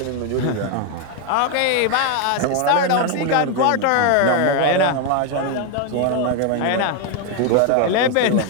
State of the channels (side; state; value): both; different; correlation 0.01